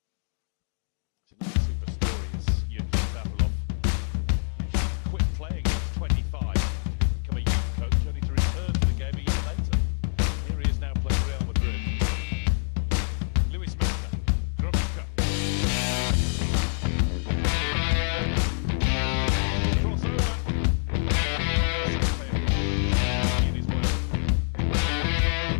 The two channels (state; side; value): silent; right; digital silence